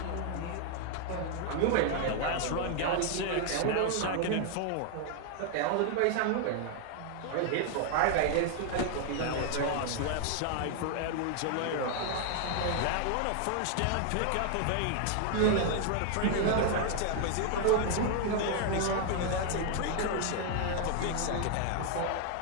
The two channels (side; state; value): both; different; correlation 0.00